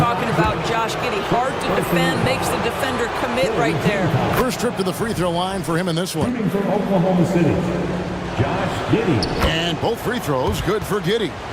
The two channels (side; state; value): both; identical; correlation 1.00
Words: about Josh Giddey. Hard to defend, makes the defender commit right there. First trip to the free throw line for him in this one. Shooting from Oklahoma City, Josh Giddey. And both free throws good for Giddey.